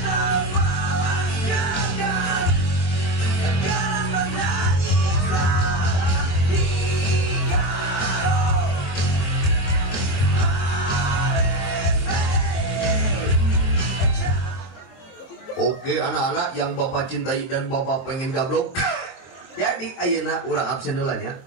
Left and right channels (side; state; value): right; late; 23 ms